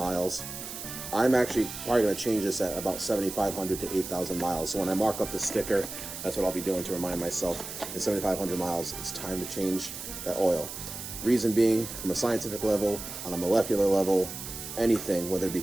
I'm actually probably going to change this at about 7,500 to 8,000 miles. So when I mark up the sticker, that's what I'll be doing to remind myself. At 7,500 miles, it's time to change that oil. Reason being, from a scientific level, on a molecular level, anything, whether it be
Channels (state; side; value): noise; right; hiss, 9 dB below the sound